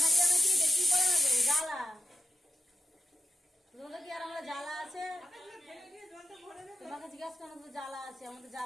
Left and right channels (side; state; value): both; normal; correlation 0.90